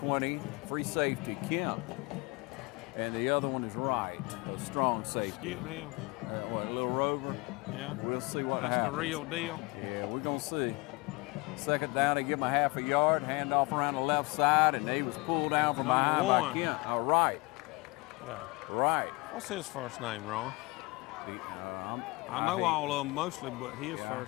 Free safety, Kemp. And the other one is Wright, a strong safety. Skip him. A little Rover? Yeah. We'll see what happens. That's the real deal. Yeah, we're going to see. Second down, they give him a half a yard, hand off around the left side, and they was pulled down from behind by Kemp. Wright. Yeah. Right. What's his first name, Ron? I know all of them mostly, but his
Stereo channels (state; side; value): quieter; right; 25.2 dB